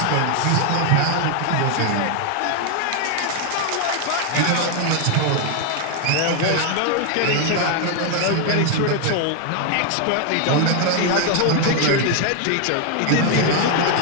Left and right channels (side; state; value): both; different; correlation 0.01